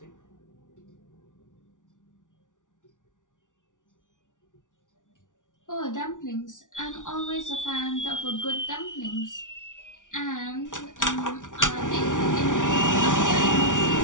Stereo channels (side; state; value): right; late; 0.87 ms